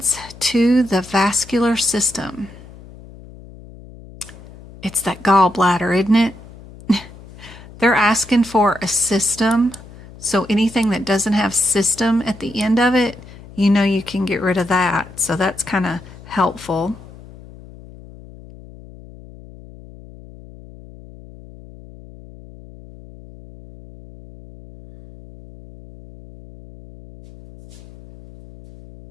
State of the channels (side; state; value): left; noise; hum, 19 dB below the sound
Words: to the vascular system? It's that gallbladder, isn't it? They're asking for a system, so anything that doesn't have system at the end of it, you know you can get rid of that. So that's kind of helpful.